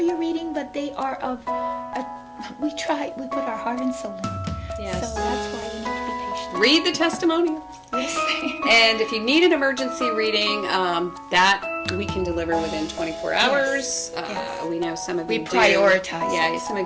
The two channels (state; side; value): identical; both; correlation 1.00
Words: your reading. But they are we put our heart and soul in it. Yes. So that's why you need to be patient. Read the testimonials. Yes. And if you need an emergency reading, that we can deliver within 24 hours. Yes. We know some of We you do. prioritize. Yeah, some